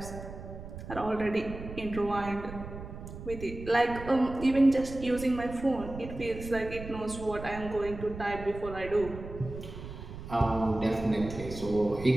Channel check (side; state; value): right; noise; rumble, 11 dB below the sound